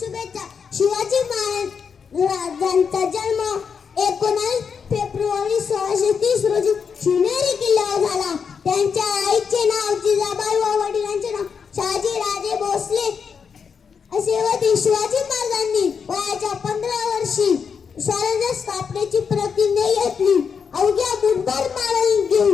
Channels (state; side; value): quieter; right; 6.3 dB